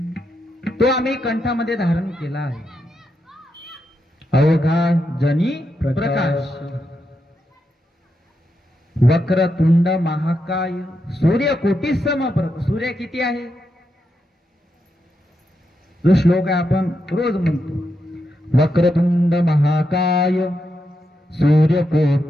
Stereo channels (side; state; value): both; normal; correlation 0.84